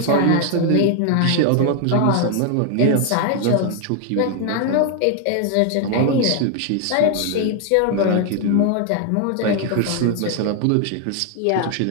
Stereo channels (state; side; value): different; both; correlation 0.00